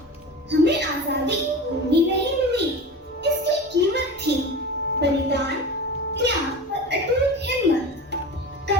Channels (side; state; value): both; normal; correlation 0.31